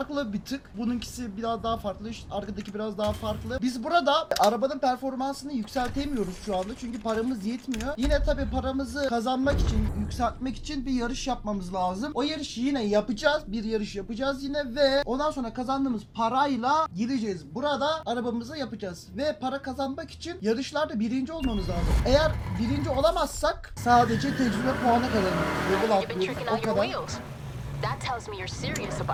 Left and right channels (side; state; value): both; identical; correlation 1.00